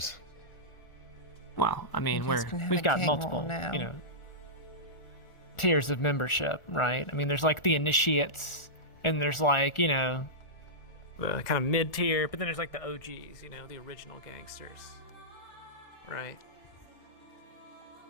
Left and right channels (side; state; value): right; late; 1.4 ms